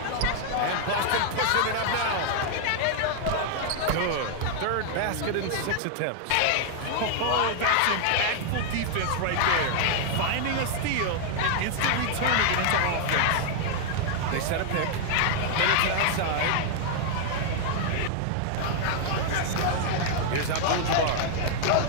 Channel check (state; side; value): different; both; correlation -0.01